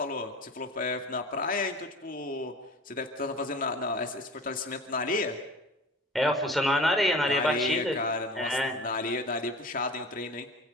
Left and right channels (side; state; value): both; normal; correlation 0.39